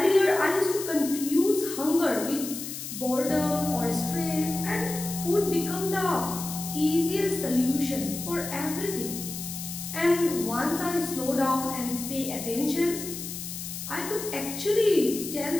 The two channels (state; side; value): noise; left; hiss, 8 dB below the sound